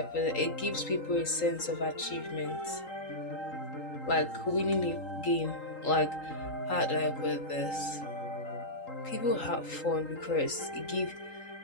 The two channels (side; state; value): right; late; 3.8 ms